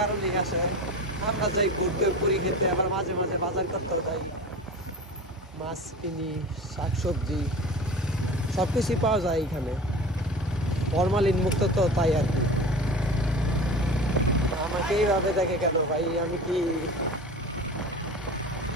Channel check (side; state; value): both; normal; correlation 0.34